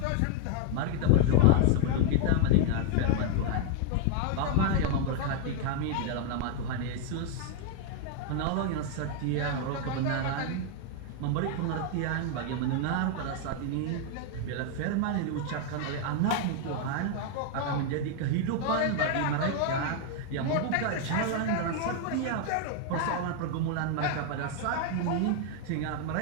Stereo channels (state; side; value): different; both; correlation 0.00